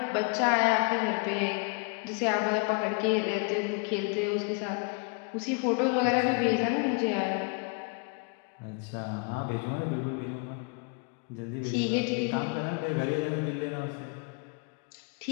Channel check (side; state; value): right; quieter; 35.6 dB